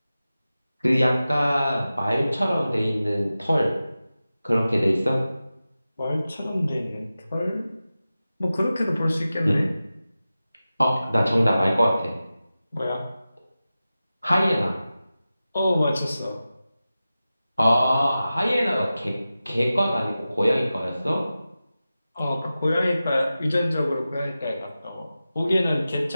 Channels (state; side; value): inverted; both; correlation -0.94